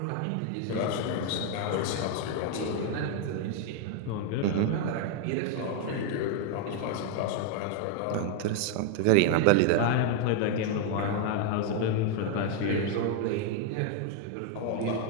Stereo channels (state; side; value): different; both; correlation 0.00